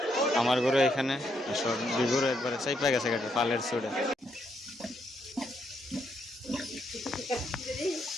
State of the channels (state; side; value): normal; both; correlation 0.77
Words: আমার গরু এখানে সব গরু একবারে চাইপা গেছে পালের চুড়ে।